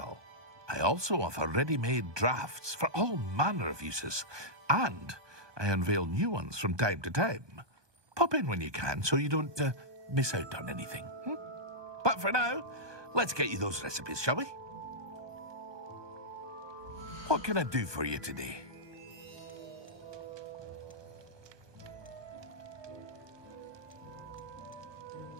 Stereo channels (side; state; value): left; late; 1.2 ms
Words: I also offer ready-made drafts for all manner of uses, and I unveil new ones from time to time. Pop in when you can so you don't miss out on anything. But for now, let's get you those recipes, shall we? What can I do for you today?